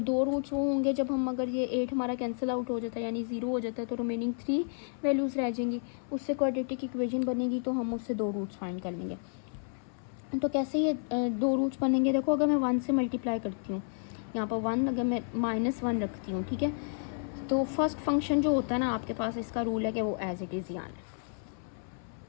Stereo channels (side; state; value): right; silent; 57 dB below the other